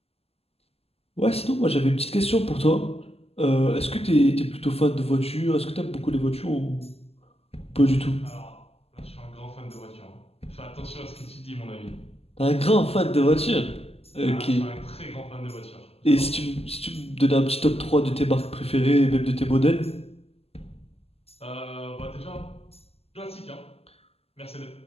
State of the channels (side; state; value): right; late; 0.29 ms